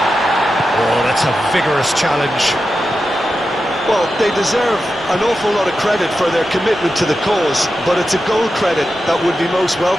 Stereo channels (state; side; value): noise; right; rumble, 24 dB below the sound